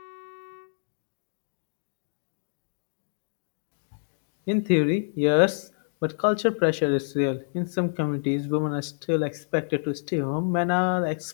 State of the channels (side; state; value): right; silent; digital silence